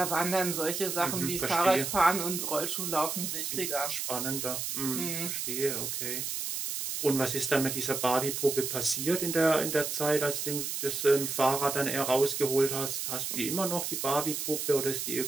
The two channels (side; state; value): right; noise; hiss, 3 dB below the sound